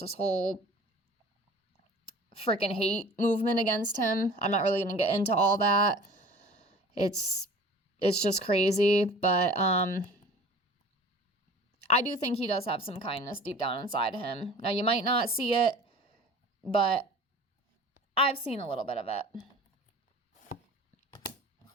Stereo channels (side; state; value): both; normal; correlation 0.43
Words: this whole freaking hate movement against him. I'm not really going to get into all that. It's just crazy, but I do think he does have some kindness deep down inside him. Now, you might not see it, but I've seen a little bit of it.